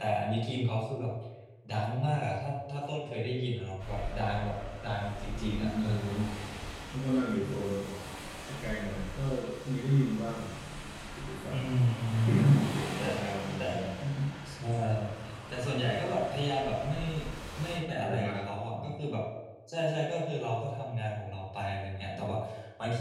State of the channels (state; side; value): identical; both; correlation 1.00